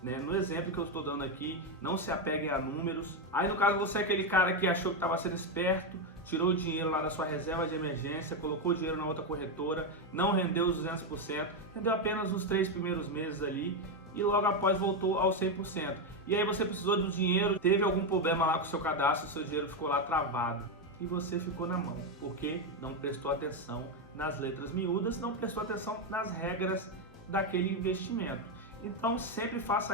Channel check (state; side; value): normal; both; correlation 0.07